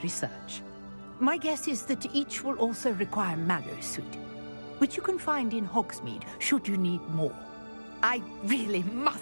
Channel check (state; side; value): inverted; both; correlation -1.00